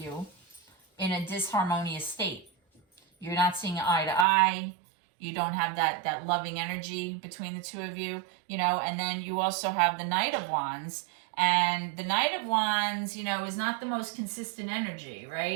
in a disharmonious state. You're not seeing eye to eye. You don't have that loving energy between the two of you, and then you also have the Knight of Wands. And the Knight of Wands, is not the most consistent energy,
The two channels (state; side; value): drops out; left; at 4.2 s